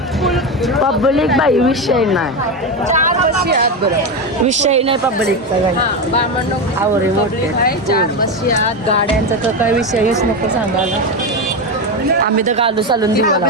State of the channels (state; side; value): normal; both; correlation 0.14